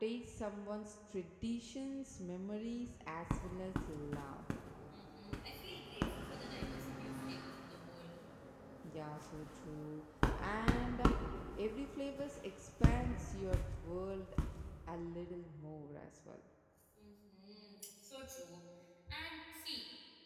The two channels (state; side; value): identical; both; correlation 1.00